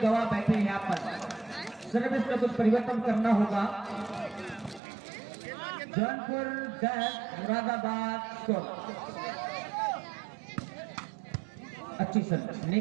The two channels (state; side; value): drops out; left; at 4.8 s